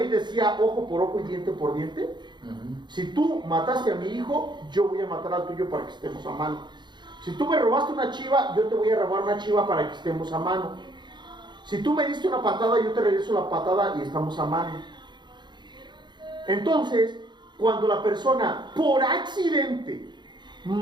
decía ojo por ojo y diente por diente? Si tú mataste a mi hijo, yo voy a matar al tuyo para que estemos a mano. Si tú me robaste una chiva, yo te voy a robar una chiva para que estemos a mano. Si tú me diste una patada, yo te regreso la patada y estamos a mano. Entonces, cuando la persona por accidente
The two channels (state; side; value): late; left; 0.22 ms